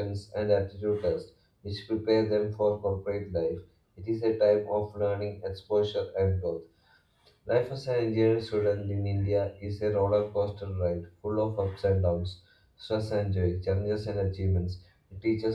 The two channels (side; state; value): both; identical; correlation 1.00